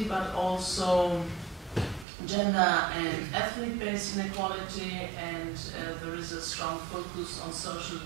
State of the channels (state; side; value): drops out; left; at 2.1 s